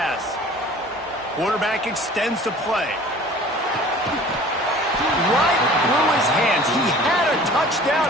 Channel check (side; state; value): both; normal; correlation 0.46